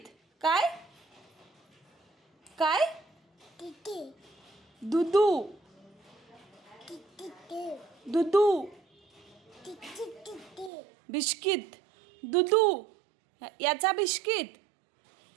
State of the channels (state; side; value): drops out; left; at 10.7 s